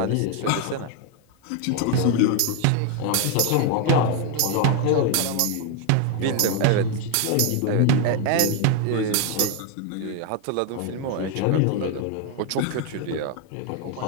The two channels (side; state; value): both; different; correlation 0.01